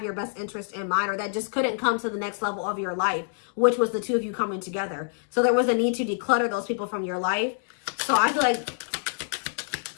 your best interest in mind or that just couldn't come to the next level of your life, which was the two of you coming together. So there was a need to declutter those people from your life. So I feel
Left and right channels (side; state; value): right; silent; digital silence